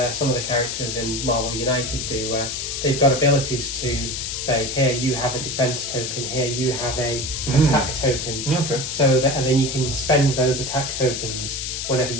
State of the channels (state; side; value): noise; left; hiss, 4 dB below the sound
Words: of the characters in Marvel United do, where they've got abilities to say, here you have a defense token, here you have a attack token. Okay. So that, and then you can spend those attack tokens whenever